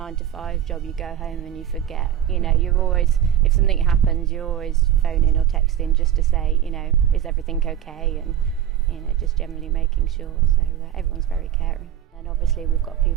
job. You go home and you forget, you know, you're always, if something happens, you're always phoning or texting just to say, you know, is everything okay, and, you know, just generally making sure. So everyone's very caring. And obviously we've got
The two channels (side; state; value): left; quieter; 10.7 dB